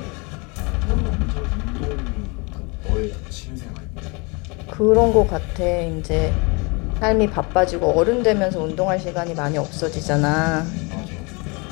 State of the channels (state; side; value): quieter; right; 29.4 dB